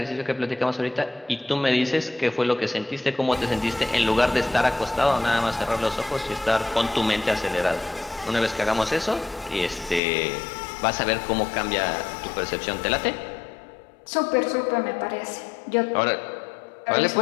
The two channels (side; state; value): right; drops out; at 10.0 s